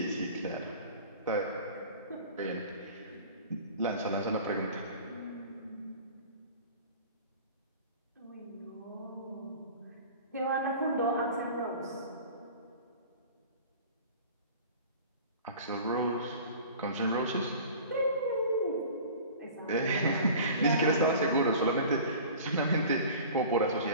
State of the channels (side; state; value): both; inverted; correlation -0.41